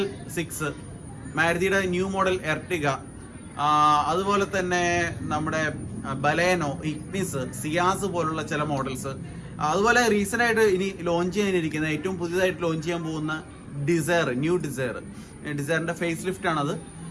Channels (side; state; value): both; identical; correlation 1.00